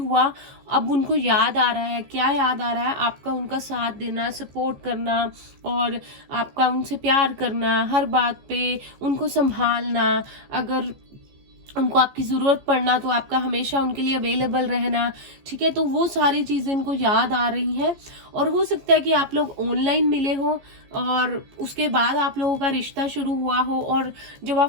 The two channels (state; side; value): late; left; 15 ms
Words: अब उनको याद आ रहा है। क्या याद आ रहा है? आपका उनका साथ देना, सपोर्ट करना, और आपका उनसे प्यार करना, हर बात पे उनको संभालना। अगर उनको आपकी ज़रूरत पड़ना तो आपका हमेशा उनके लिए अवेलेबल रहना, ठीक है। तो वो सारी चीज़ें इनको याद आ रही हैं। और हो सकता है कि आप लोग ऑनलाइन मिले हो और उसके बाद आप लोगों का रिश्ता शुरू हुआ हो, और जब आप